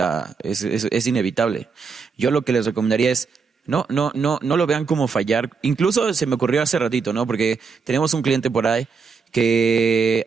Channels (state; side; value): quieter; left; 5.3 dB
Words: es inevitable. Yo lo que les recomendaría es no lo vean como fallar. Incluso se me ocurrió hace ratito, ¿no? Porque tenemos un cliente por ahí que